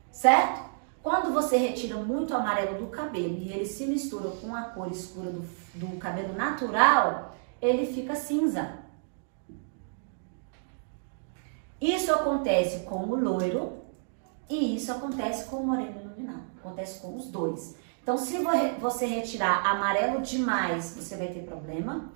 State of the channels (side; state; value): left; silent; digital silence